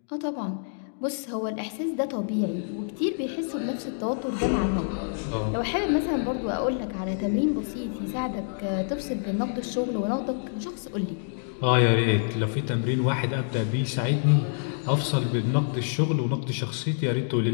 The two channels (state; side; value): silent; right; digital silence